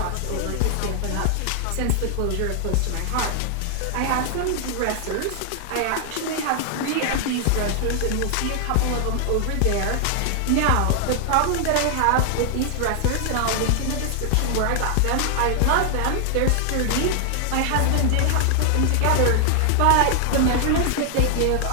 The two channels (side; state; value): both; different; correlation 0.00